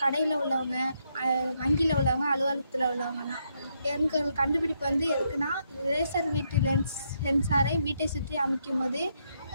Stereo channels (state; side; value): inverted; both; correlation -0.77